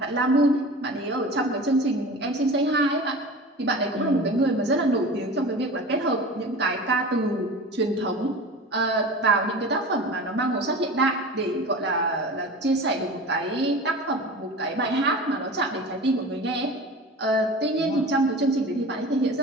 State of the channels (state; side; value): normal; both; correlation 0.35